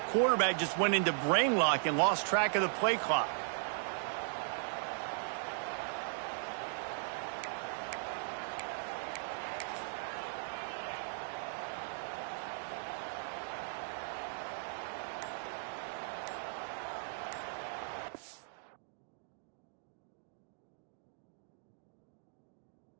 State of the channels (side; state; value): left; silent; digital silence